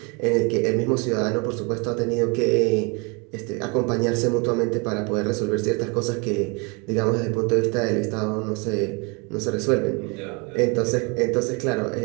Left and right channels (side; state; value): left; quieter; 31.0 dB